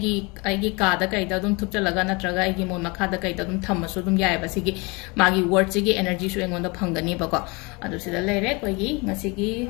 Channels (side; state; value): right; quieter; 27.8 dB